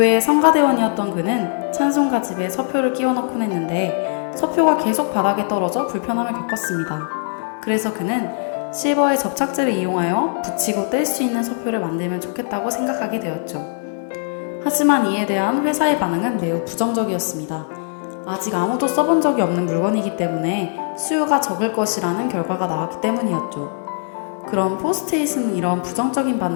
성가대원이었던 그는 찬송가 집에 서표를 끼워 넣곤 했는데 서표가 계속 바닥에 떨어져 불편함을 겪었습니다. 그래서 그는 실버의 접착제를 이용하여 붙이고 뗄 수 있는 서표를 만들면 좋겠다고 생각하게 되었죠. 하지만 이에 대한 회사의 반응은 매우 부정적이었습니다. 아직 아무도 써본 적이 없는 물건이기 때문에 수요가 적을 것이라는 결과가 나왔기 때문이었죠. 그럼 포스트잇은 이런 부정적인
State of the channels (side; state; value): right; silent; digital silence